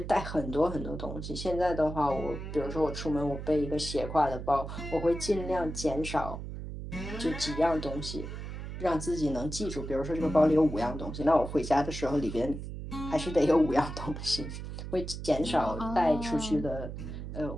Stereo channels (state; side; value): noise; right; hum, 8 dB below the sound